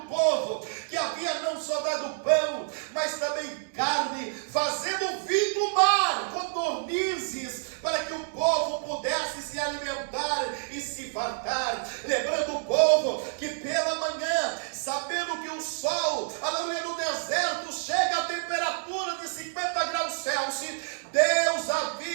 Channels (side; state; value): left; silent; digital silence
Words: povo, que havia não só dado pão, mas também carne, fazendo vir do mar codornizes, para que o povo pudesse se alimentar e se fartar. Lembrando o povo que pela manhã, sabendo que o sol, aleluia, no deserto chega a temperatura de 50 graus Celsius, Deus